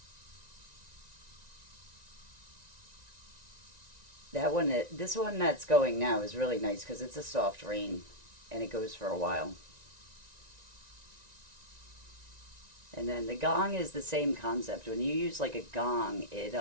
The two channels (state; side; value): late; left; 1.9 ms